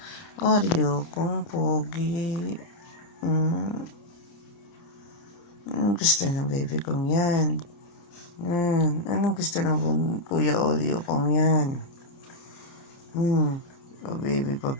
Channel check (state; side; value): late; right; 30 ms